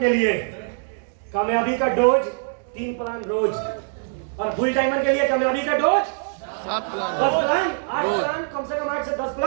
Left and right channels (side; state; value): left; silent; digital silence